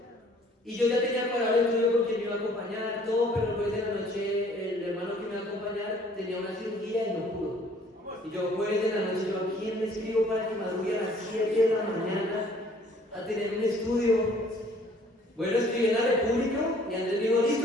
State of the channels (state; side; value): normal; both; correlation 0.57